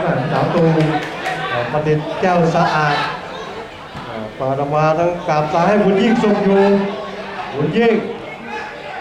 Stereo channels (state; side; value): identical; both; correlation 1.00